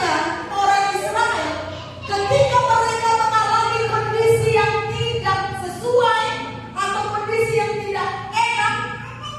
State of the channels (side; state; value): both; identical; correlation 1.00